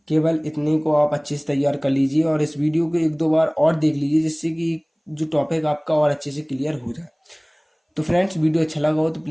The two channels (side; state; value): both; identical; correlation 1.00